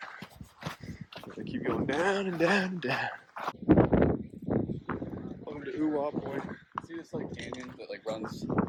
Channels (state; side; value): identical; both; correlation 1.00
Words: Gonna keep going down and down and down. Welcome to Ooh-ah Point. See this like canyon that like runs